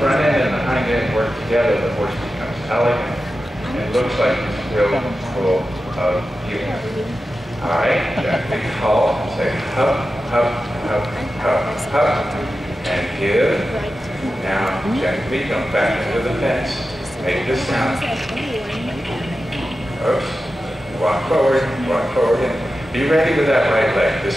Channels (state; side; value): normal; both; correlation 0.92